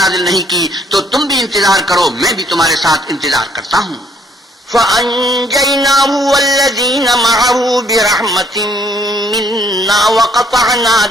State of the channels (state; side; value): normal; both; correlation 0.65